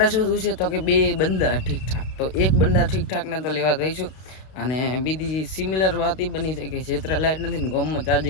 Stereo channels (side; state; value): right; late; 32 ms